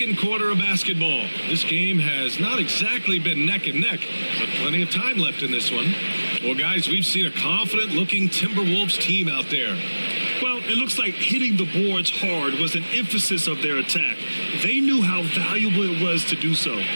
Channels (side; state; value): both; inverted; correlation -1.00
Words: second quarter of basketball. This game has not exactly been neck and neck, but plenty of time left in this one. Well, guys, we've seen a confident-looking Timberwolves team out there. Well, it looks like hitting the boards hard was an emphasis of their attack. They knew how valuable it was to do so.